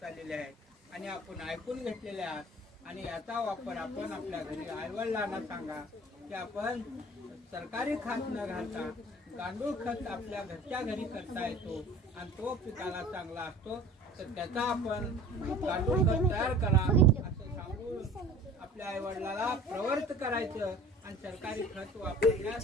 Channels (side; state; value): both; normal; correlation 0.45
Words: आलेली आहे आणि आपण ऐकून घेतलेले आहात आणि याचा वापर आपण आपल्या घरी आईवडिलांना सांगा की आपण सरकारी खत न घालता गांडूळ खत आपल्या घरच्या घरी करता येतो आणि तो पिकाला चांगला असतो। तर त्याचा आपण गांडूळ खत तयार करा असं सांगून आपल्या आईवडिलाला प्रवृत्त करायचं आणि सरकारी खत